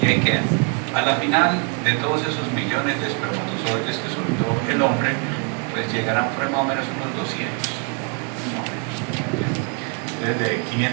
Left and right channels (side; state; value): left; quieter; 37.3 dB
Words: y ahí quedan. A la final de todos esos millones de espermatozoides que soltó el hombre, pues llegarán por más o menos unos 200. Desde